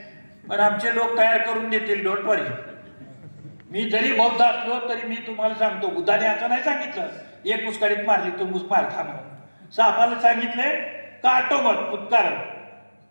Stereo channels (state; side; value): inverted; both; correlation -1.00